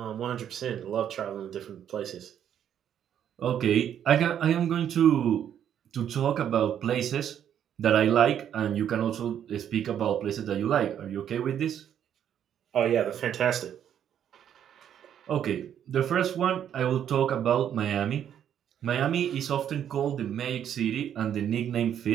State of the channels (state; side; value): quieter; left; 9.6 dB